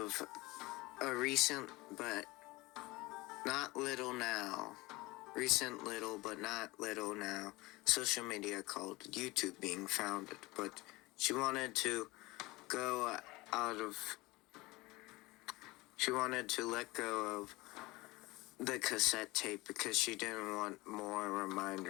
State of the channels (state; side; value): quieter; right; 21.5 dB